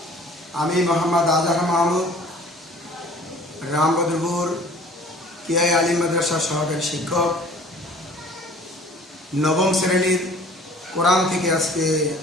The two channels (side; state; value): both; normal; correlation 0.50